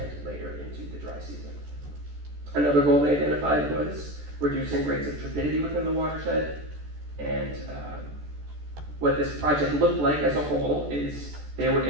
later into the dry season. Another goal they identified was reducing rates of turbidity within the watershed, and what this project looked like as a whole is they were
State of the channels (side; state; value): left; late; 14 ms